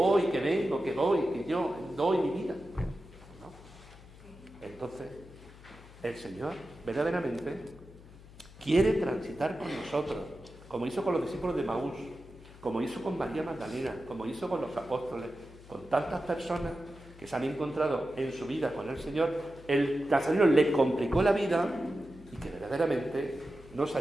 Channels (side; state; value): left; noise; hum, 20 dB below the sound